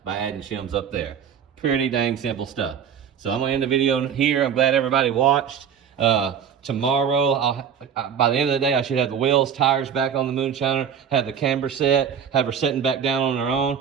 by adding shims up there. Pretty dang simple stuff. So I'm gonna end the video here. I'm glad everybody watched. Tomorrow, by the end of the day, I should have the wheels, tires back on the Moonshiner, have the camber set, have her setting back down on her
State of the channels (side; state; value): left; quieter; 7.9 dB